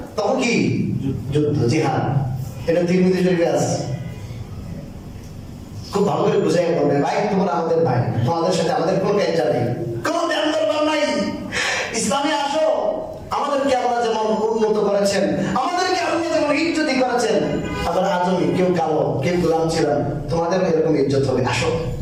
তখন কি? যুদ্ধ, জিহাদ। এটা তিরমিজি শরীফে আছে। খুব ভালো করে বুঝাই বলবে, ভাই তোমরা আমাদের ভাই, তোমাদের সাথে আমাদের কোনো ক্যাঞ্চা নেই, কোনো ধ্যান দরবার নাই। ইসলামে আসো, আমাদেরকে আল্লাহ যেমন উন্নত করেছেন, আমাদেরকে আল্লাহ যেমন ইজ্জতি করেছেন, আমরা আজমি, কেউ কালো কেউ গোলাম ছিলাম, তোমাদের এরকম ইজ্জত হবে, আসো।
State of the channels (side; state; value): both; identical; correlation 1.00